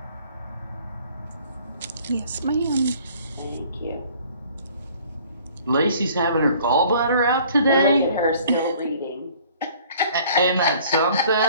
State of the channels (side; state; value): both; inverted; correlation -0.54